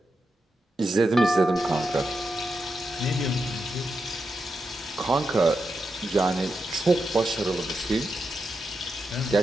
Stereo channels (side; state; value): both; normal; correlation 0.87